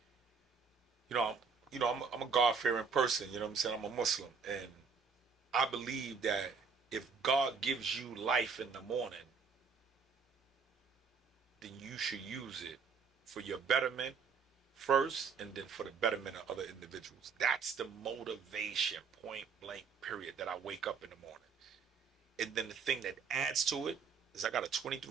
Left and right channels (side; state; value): left; quieter; 5.6 dB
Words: I'm a God-fearing person. You know what I'm saying? I'm a Muslim, and I believe that if God gives you life in the morning, then you should use it for your betterment first, and then for the betterment of other individuals. That's the motivation, point blank, period, that I wake up in the morning. And then the thing that adds to it is I got a